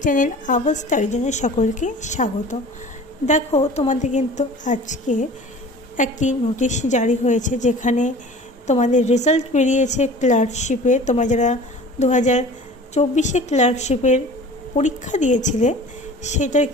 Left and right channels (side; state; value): both; normal; correlation 0.43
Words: চ্যানেল আওয়াজ স্টাডিজনে সকলকে স্বাগত। দেখো, তোমাদের কিন্তু আজকে একটি নোটিশ জারি হয়েছে, যেখানে তোমাদের রেজাল্ট বেরিয়েছে ক্লার্কশিপে। তোমরা যারা 2024-এ ক্লার্কশিপের পরীক্ষা দিয়েছিলে, সেটার